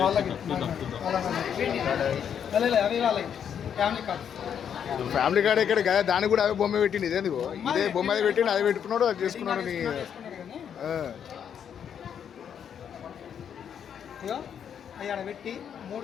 వాళ్ళకి అవి వాళ్ళకి ఫ్యామిలీ కార్డ్. ఫ్యామిలీ కార్డ్ ఎక్కడ కదా, దానికి కూడా అవే బొమ్మ పెట్టింది. ఇదేంది ఇదే బొమ్మ అది పెట్టిండు, అది పెట్టుకున్నాడు, అది చేసుకున్నాడు. నీ ఇగో అవి ఆడ పెట్టి 3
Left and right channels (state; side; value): quieter; right; 8.3 dB